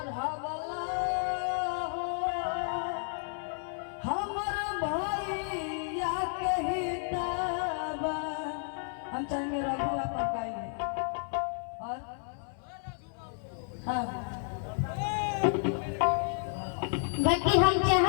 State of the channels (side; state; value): right; silent; 57 dB below the other